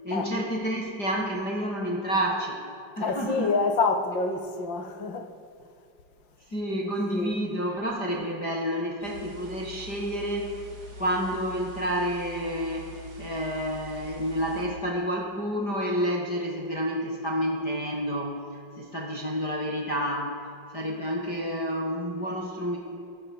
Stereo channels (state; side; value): late; right; 5.0 ms